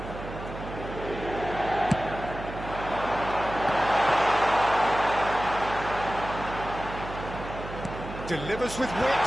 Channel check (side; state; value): right; noise; hum, 10 dB below the sound